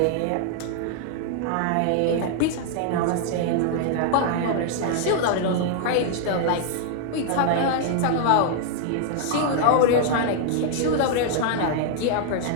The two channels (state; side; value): different; both; correlation -0.01